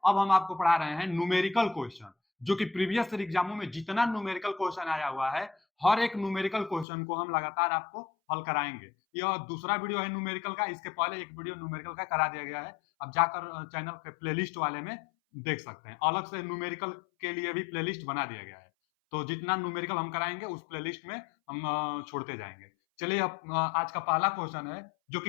अब हम आपको पढ़ा रहे हैं न्यूमेरिकल क्वेश्चन, जो कि प्रीवियस ईयर एग्जामों में जितना न्यूमेरिकल क्वेश्चन आया हुआ है, हर एक न्यूमेरिकल क्वेश्चन को हम लगातार आपको हल कराएंगे। यह दूसरा वीडियो है न्यूमेरिकल का, इसके पहले एक वीडियो न्यूमेरिकल का करा दिया गया है। अब जाकर चैनल के प्लेलिस्ट वाले में देख सकते हैं। अलग से न्यूमेरिकल के लिए भी प्लेलिस्ट बना दिया गया है, तो जितना न्यूमेरिकल हम कराएंगे उस प्लेलिस्ट में हम छोड़ते जाएंगे। चलिए, अब आज का पहला क्वेश्चन है जो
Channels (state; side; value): drops out; right; at 6.9 s